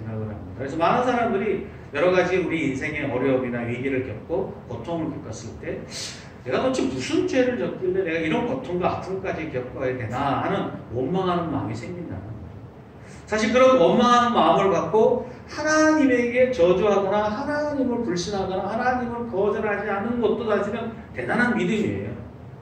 합니다. 그래서 많은 사람들이 여러 가지 우리 인생의 어려움이나 위기를 겪고 고통을 겪었을 때 내가 도대체 무슨 죄를 졌길래 내가 이런 고통과 아픔까지 겪어야 되나 하는 원망하는 마음이 생긴다는 거죠. 사실 그런 원망하는 마음을 갖고 하나님에게 저주하거나 하나님을 불신하거나 하나님을 거절하지 않는 것도 사실은 대단한 믿음이에요.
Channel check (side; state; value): both; identical; correlation 1.00